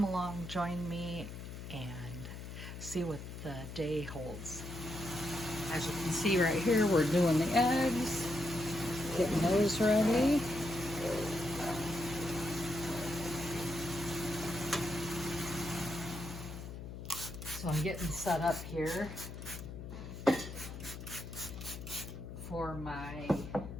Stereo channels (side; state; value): left; noise; hum, 10 dB below the sound